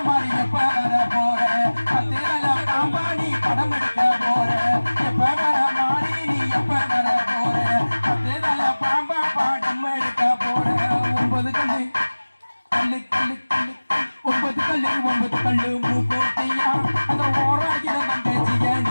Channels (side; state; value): both; inverted; correlation -1.00